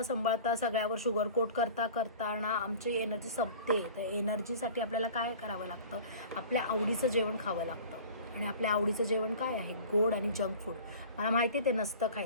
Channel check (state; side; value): inverted; both; correlation -0.42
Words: सगळ्यावर शुगर कोट करता ना आमची एनर्जी संपते. तर एनर्जीसाठी आपल्याला काय करावं लागतं? आपल्या आवडीचं जेवण खावं लागतं. आणि आपल्या आवडीचं जेवण काय आहे? गोड आणि जंक फूड. मला माहिती आहे ते नसतं